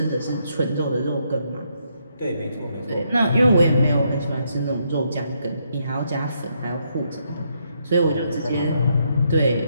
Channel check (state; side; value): inverted; both; correlation -0.76